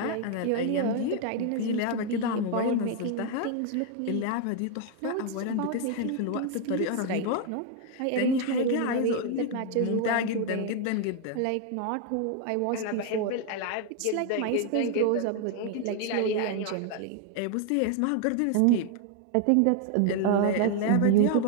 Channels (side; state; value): both; different; correlation 0.01